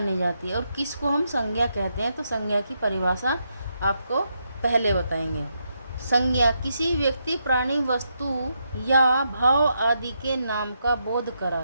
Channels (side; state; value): both; inverted; correlation -0.81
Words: जाती है और किसको हम संज्ञा कहते हैं। तो संज्ञा की परिभाषा आपको पहले बताएंगे। संज्ञा किसी व्यक्ति, प्राणी, वस्तु या भाव आदि के नाम का बोध